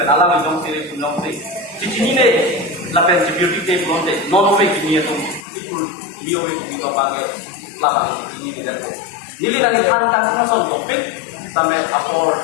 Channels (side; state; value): right; drops out; at 5.5 s